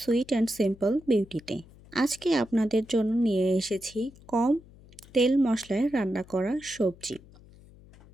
and simple বিউটিতে। আজকে আপনাদের জন্য নিয়ে এসেছি কম তেল মশলায় রান্না করা সবজি।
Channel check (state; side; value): noise; left; hum, 23 dB below the sound